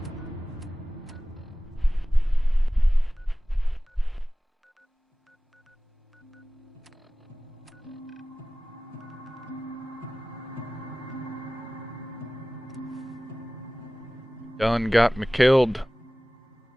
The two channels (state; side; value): normal; both; correlation 0.97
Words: Done got me killed.